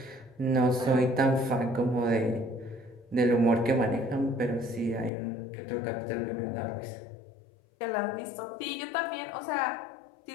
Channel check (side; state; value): right; drops out; at 5.1 s